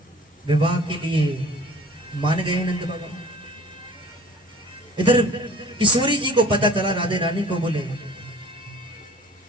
विवाह के लिए मान गए नंद बाबा। इधर किशोरी जी को पता चला, राधे रानी को, बोले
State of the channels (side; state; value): both; normal; correlation 0.47